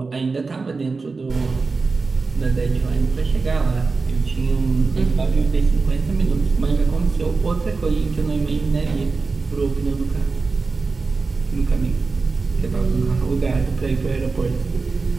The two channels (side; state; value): left; quieter; 4.1 dB